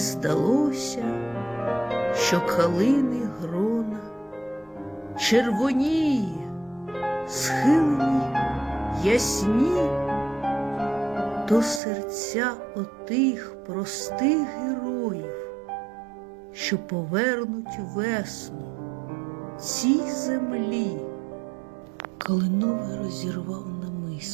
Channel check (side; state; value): left; drops out; at 11.8 s